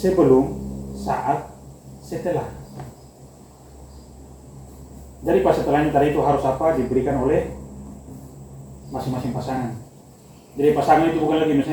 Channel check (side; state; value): both; identical; correlation 1.00